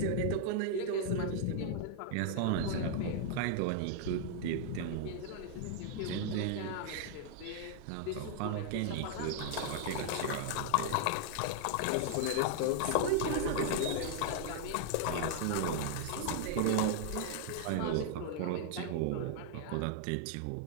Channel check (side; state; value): both; different; correlation 0.00